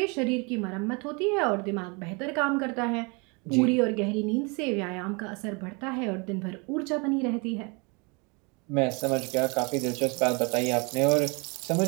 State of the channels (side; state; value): left; quieter; 30.8 dB